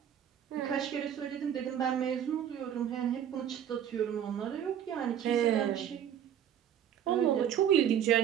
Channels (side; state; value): left; quieter; 9.7 dB